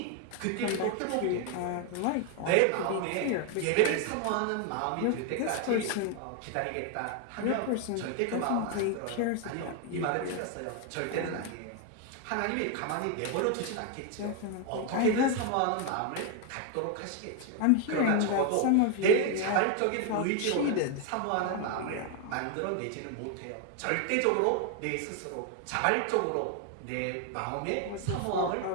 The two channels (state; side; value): different; both; correlation 0.01